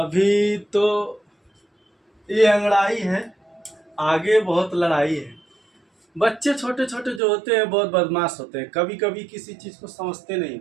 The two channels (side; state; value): left; drops out; at 7.2 s